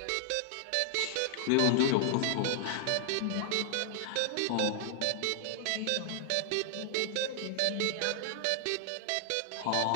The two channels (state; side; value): different; both; correlation 0.00